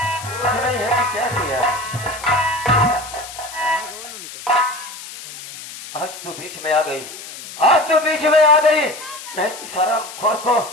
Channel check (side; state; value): left; noise; hiss, 13 dB below the sound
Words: नहीं है। क्या किया? आज तो बीच में आ गई, आज तो बीच में आ गई। मैं सारा खोर को